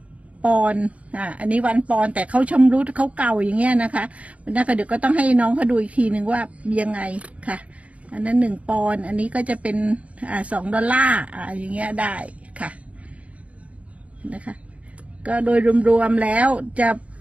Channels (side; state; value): left; late; 0.065 ms